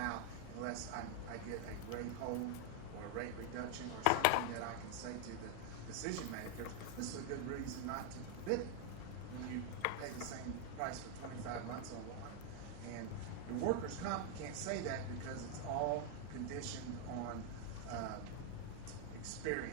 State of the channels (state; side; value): different; both; correlation 0.00